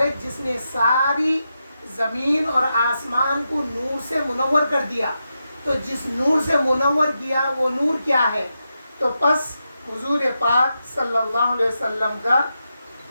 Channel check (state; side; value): inverted; both; correlation -0.87